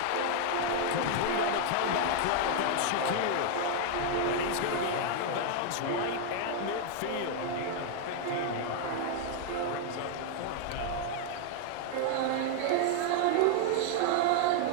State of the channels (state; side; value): different; both; correlation 0.00